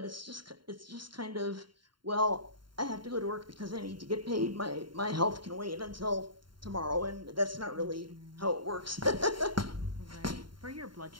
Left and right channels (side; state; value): left; late; 0.72 ms